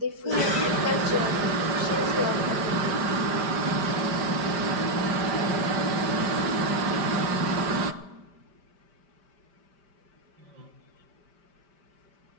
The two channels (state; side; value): late; left; 5.1 ms